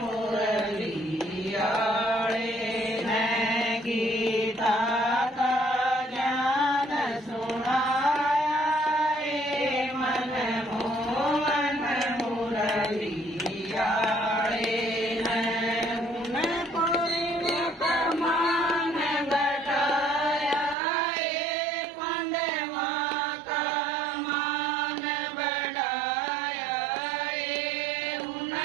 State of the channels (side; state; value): left; drops out; at 20.8 s